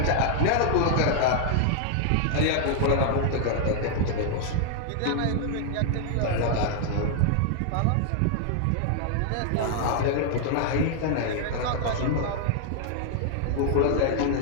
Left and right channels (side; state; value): both; different; correlation -0.01